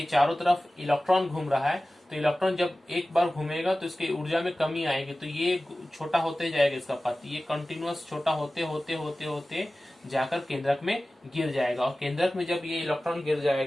चारों तरफ इलेक्ट्रॉन घूम रहा है तो इलेक्ट्रॉन जब एक बार घूमेगा तो इसकी ऊर्जा में कमी आएगी, तो ये छोटा होते जाएगा इसका पथ, ये कंटिन्यूअस छोटा होते होते होते होते जाकर केंद्रक में गिर जाएगा और केंद्रक में जब ये इलेक्ट्रॉन गिर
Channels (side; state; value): both; normal; correlation 0.96